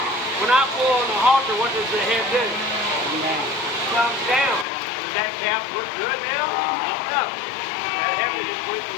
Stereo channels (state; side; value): drops out; right; at 4.7 s